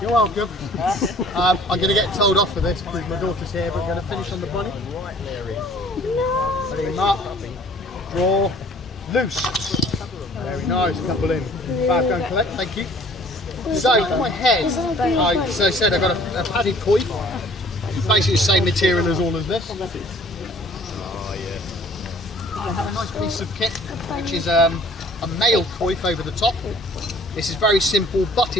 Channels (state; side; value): normal; both; correlation 0.53